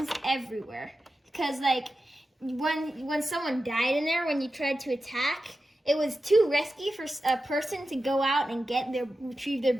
everywhere because when someone died in there, when you tried to attack, it was too risky for a person to go out and retrieve their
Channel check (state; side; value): normal; both; correlation 0.92